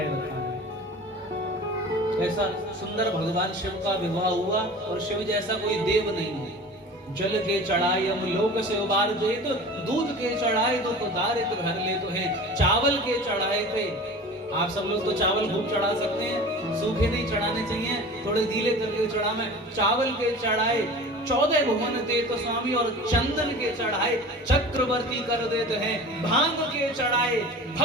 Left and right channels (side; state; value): both; normal; correlation 0.38